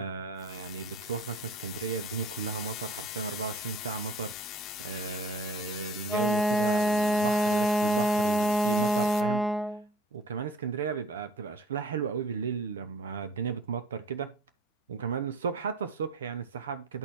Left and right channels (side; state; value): both; normal; correlation 0.49